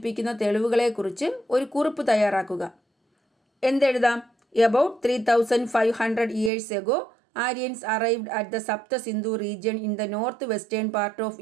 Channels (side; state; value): left; drops out; at 6.5 s